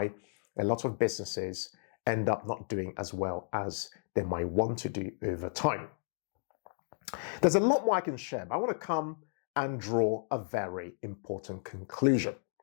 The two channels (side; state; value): right; silent; digital silence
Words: a lot of businesses end up not doing as well as they might want to do over time. There's a lot more I can share, but I want to come and draw a very important conclusion.